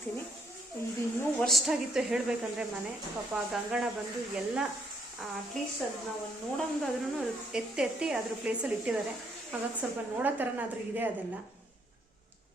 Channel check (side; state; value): both; normal; correlation 0.71